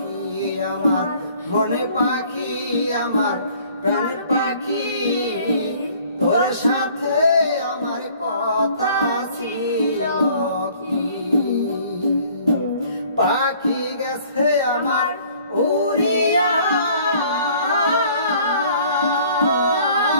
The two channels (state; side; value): inverted; both; correlation -0.55